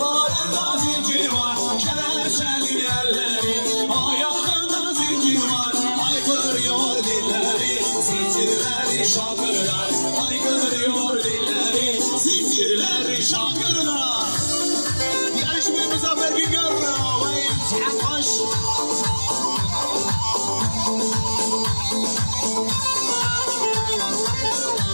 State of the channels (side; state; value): both; inverted; correlation -1.00